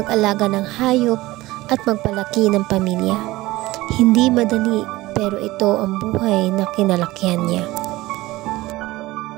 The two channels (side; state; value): left; quieter; 18.7 dB